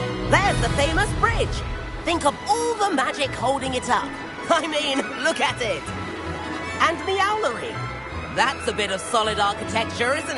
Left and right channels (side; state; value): both; identical; correlation 1.00